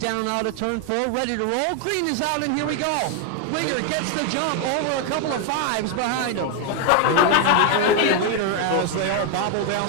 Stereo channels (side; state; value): both; different; correlation 0.01